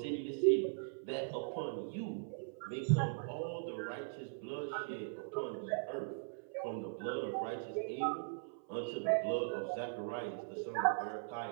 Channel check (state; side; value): silent; left; 51 dB below the other